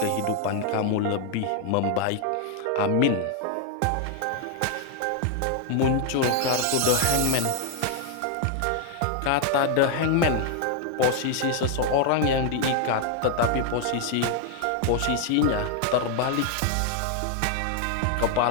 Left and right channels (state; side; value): different; both; correlation 0.00